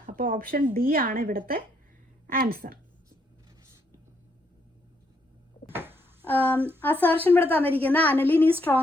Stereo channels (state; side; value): normal; both; correlation 0.74